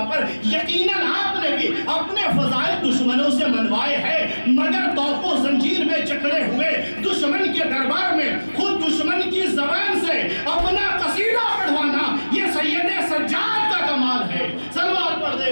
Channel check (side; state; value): both; inverted; correlation -1.00